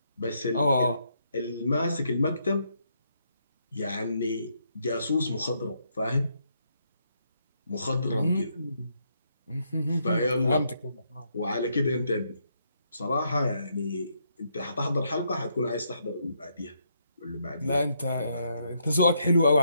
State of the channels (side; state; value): both; inverted; correlation -0.76